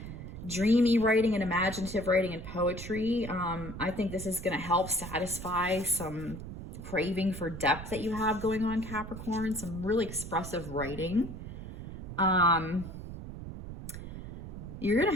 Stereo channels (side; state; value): right; noise; rumble, 10 dB below the sound